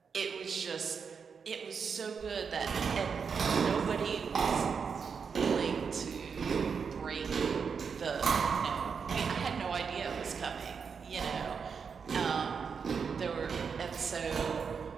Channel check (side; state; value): left; quieter; 6.0 dB